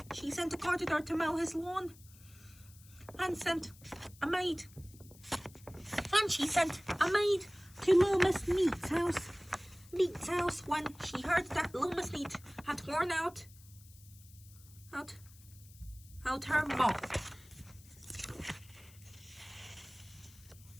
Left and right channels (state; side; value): noise; left; hiss, 23 dB below the sound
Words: she sent a gardener to mow his lawn, and sent a maid. And she sent a maid to Little Miss Neat's house when she heard that Little Miss Neat had worn out her mop.